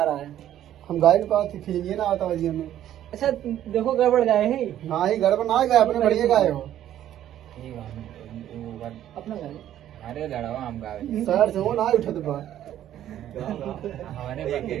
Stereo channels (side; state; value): left; quieter; 11.7 dB